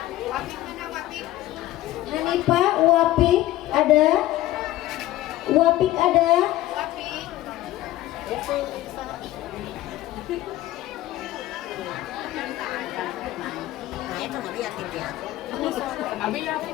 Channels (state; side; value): quieter; right; 15.3 dB